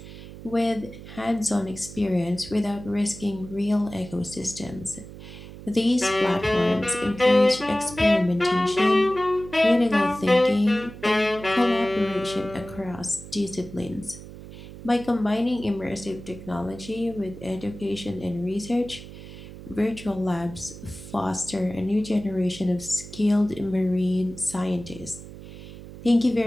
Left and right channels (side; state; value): right; noise; hum, 14 dB below the sound